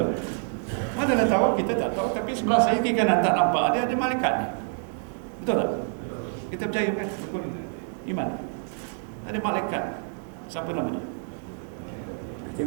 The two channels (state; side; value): silent; left; 56 dB below the other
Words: Mana dah tahu, kita tak tahu, tapi sebelah saya kiri kanan tak nampak, ada malaikat ni. Betul tak? Kita percaya kan rukun iman ni. Ada malaikat. Siapa nama dia? Yang